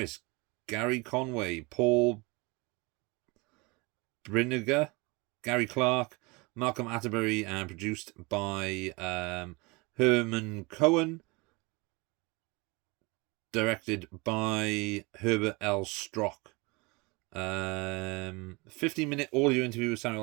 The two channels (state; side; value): quieter; left; 26.4 dB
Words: Gary Conway, Paul Brinegar, Gary Clark, Malcolm Atterbury, and produced by Herman Cohen. Directed by Herbert L. Strock. 15-minute audio interview with